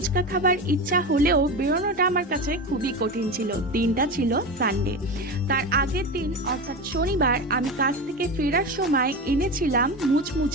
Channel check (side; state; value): both; normal; correlation 0.23